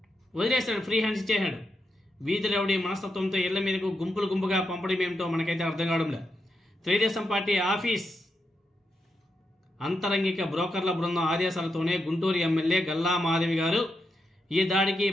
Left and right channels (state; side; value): normal; both; correlation 0.85